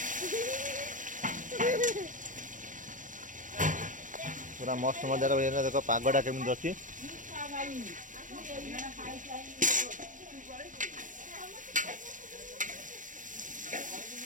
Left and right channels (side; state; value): left; late; 0.38 ms